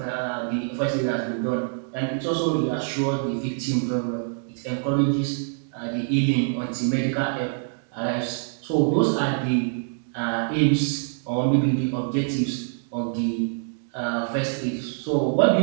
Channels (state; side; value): silent; left; 62 dB below the other